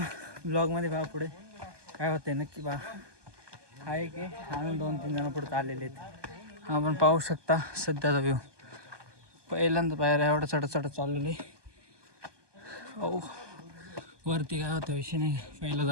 ब्लॉगमध्ये पहा पुढे काय होतंय नक्की पहा. आहे की अजून 2-3 जण पुढे चाललेले आहेत. आपण पाहू शकता सध्याचा व्ह्यू. पहिल्यांदा पायऱ्या एवढं चढत चाललेले. ओ वरती काय होतं विषय नाही, पहिल्या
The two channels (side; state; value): left; late; 1.2 ms